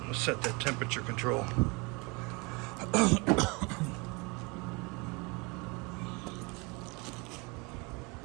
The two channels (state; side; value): quieter; left; 28.3 dB